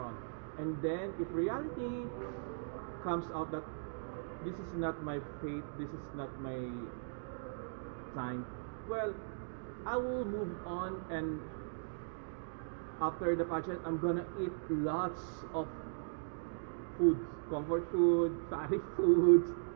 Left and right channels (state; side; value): silent; left; digital silence